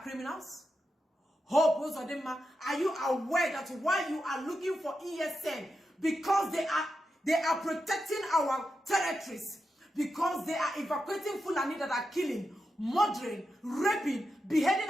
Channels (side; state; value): both; normal; correlation 0.88